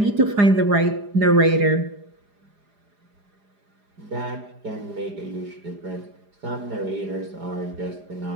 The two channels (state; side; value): late; left; 4.9 ms